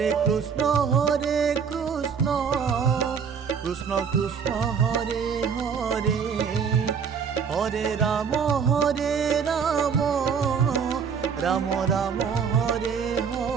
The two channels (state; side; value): quieter; left; 6.6 dB